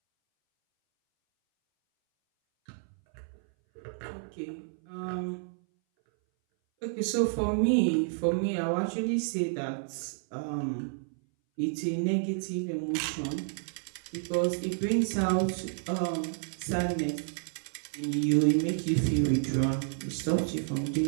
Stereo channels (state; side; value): silent; left; 58 dB below the other